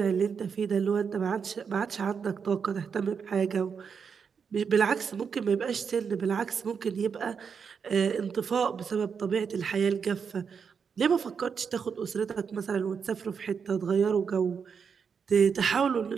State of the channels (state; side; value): quieter; left; 6.3 dB